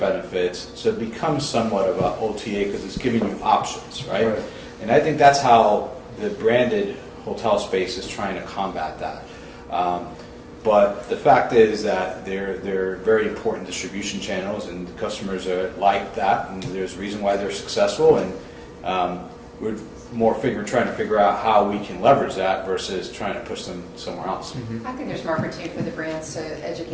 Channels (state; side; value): identical; both; correlation 1.00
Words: So it becomes somewhat of an OTA because it's giving you options, right? And I think that's how the branded hotel space is trying to combat that. But the fact is that they're very important distribution channels, and customers are like that, and there's a reason why they're successful, and we're trying to figure out how we can leverage that versus trying to push them somewhere else. Mm-hmm. I think there's more opportunity for the brands to